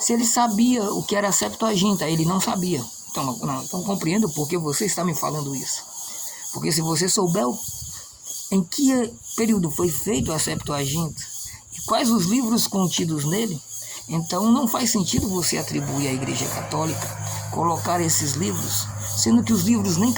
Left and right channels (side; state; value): both; identical; correlation 1.00